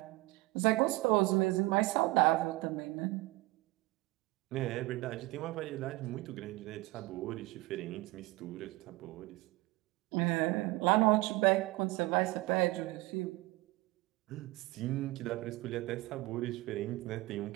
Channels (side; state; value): left; quieter; 20.5 dB